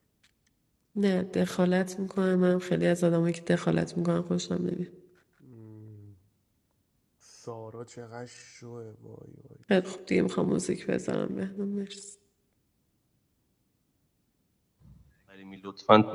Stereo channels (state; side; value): identical; both; correlation 1.00